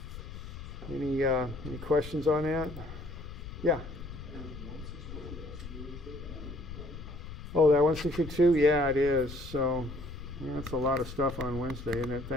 any questions on that? Yeah. Oh, that 162? Yeah, it is. So yeah, that's a lot of stuff on Wednesday, isn't it?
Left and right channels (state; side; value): noise; left; rumble, 11 dB below the sound